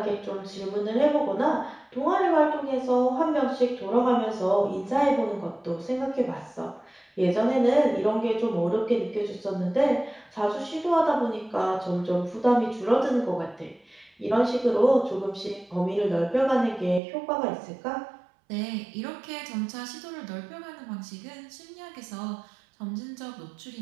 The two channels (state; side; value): drops out; left; at 17.0 s